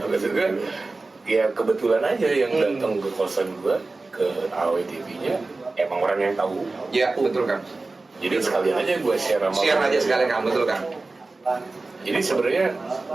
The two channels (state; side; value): quieter; left; 3.4 dB